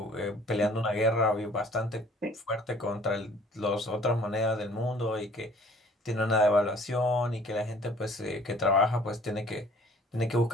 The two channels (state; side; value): normal; both; correlation 0.53